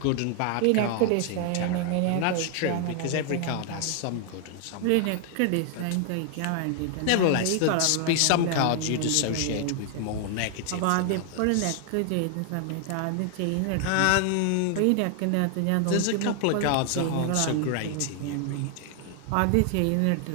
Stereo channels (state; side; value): different; both; correlation 0.00